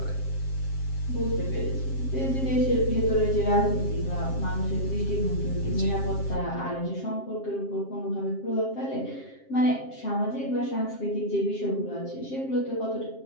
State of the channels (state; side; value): late; right; 7.5 ms